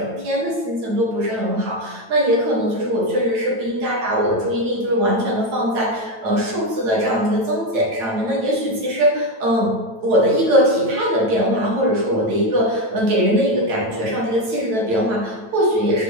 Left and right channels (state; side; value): late; left; 9.0 ms